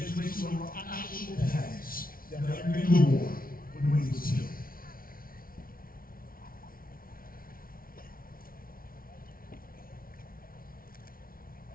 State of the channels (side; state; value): right; late; 0.42 ms